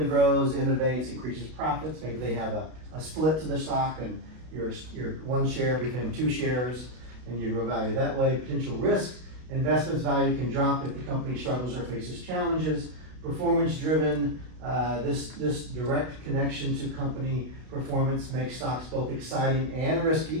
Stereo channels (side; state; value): left; late; 32 ms